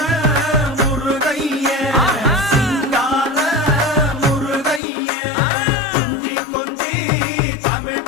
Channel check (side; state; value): right; drops out; at 4.8 s